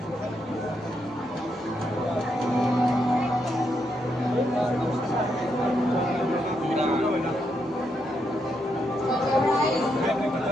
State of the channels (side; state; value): both; normal; correlation 0.80